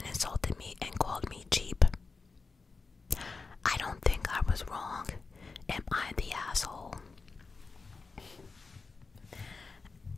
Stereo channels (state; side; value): quieter; right; 4.3 dB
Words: insulted me and called me cheap. I don't think I was wrong. Am I the asshole?